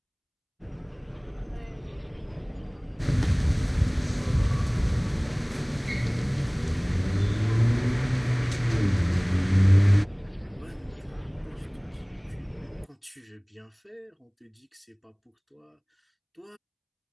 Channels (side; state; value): both; identical; correlation 1.00